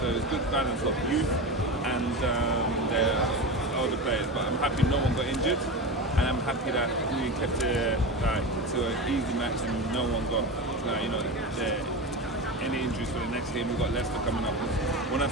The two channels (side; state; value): both; normal; correlation 0.24